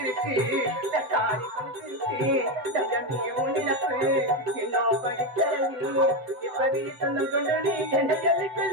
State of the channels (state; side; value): late; left; 7.7 ms